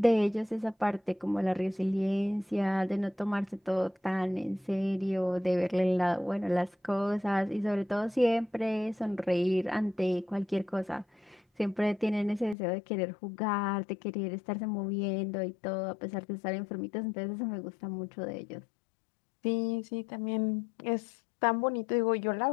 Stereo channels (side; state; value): right; drops out; at 12.6 s